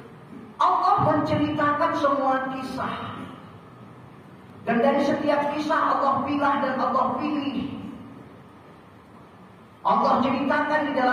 Allah menceritakan semua kisah, dan dari setiap kisah Allah pilah dan Allah pilih. Allah ceritakan di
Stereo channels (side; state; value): both; identical; correlation 1.00